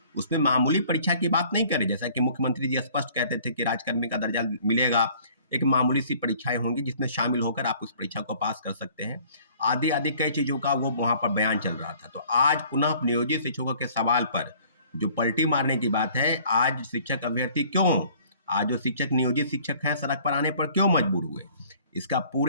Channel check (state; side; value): inverted; both; correlation -0.55